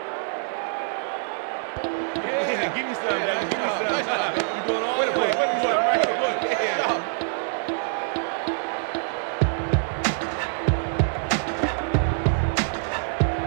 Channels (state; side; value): silent; left; 62 dB below the other